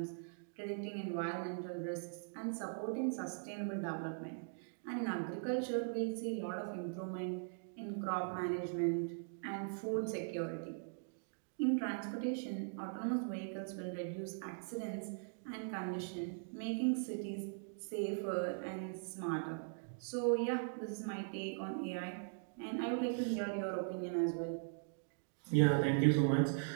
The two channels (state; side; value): silent; left; digital silence